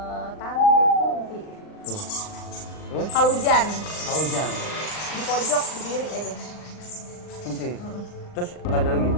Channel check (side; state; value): right; late; 39 ms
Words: Tante Kunti. Tuh. Terus? Kalau hujan. Kalau hujan. Di pojok berdiri aja. Kunti. Terus nggak ada lagi.